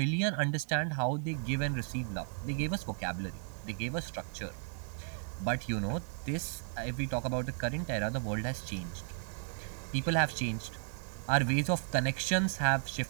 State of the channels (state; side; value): silent; left; 55 dB below the other